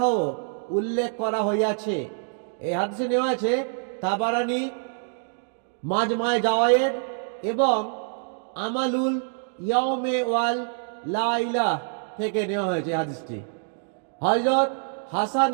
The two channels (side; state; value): left; silent; digital silence